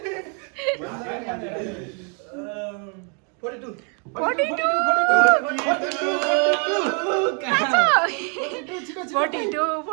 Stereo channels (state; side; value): quieter; left; 39.4 dB